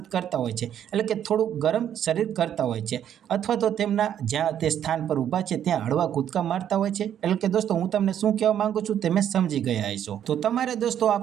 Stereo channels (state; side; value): quieter; left; 9.9 dB